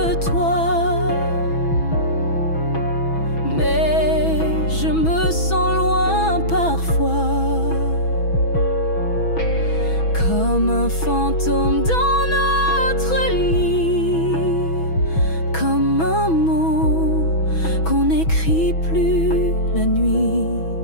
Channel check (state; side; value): late; right; 6.1 ms